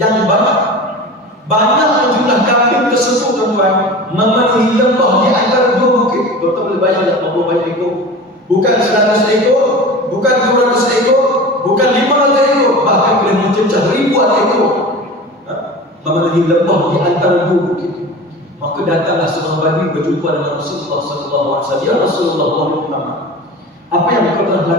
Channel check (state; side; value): normal; both; correlation 0.34